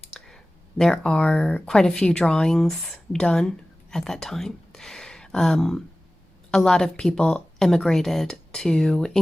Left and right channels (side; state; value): both; normal; correlation 0.97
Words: There are quite a few drawings done at that time. A lot of people immigrated to